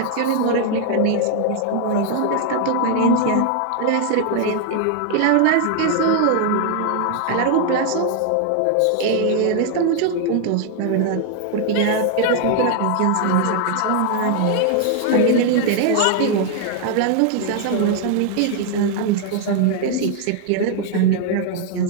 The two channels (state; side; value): different; both; correlation 0.00